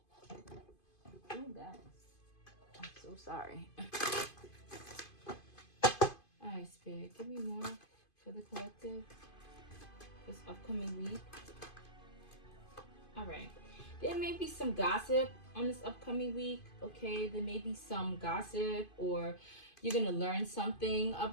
Oh, guys. I'm so sorry. Alright, Spirit, give me more for the collective this upcoming week. Alright. There may be some gossip on this upcoming week, okay? There may be some gossip, or you're going to learn something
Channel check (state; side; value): late; right; 2.5 ms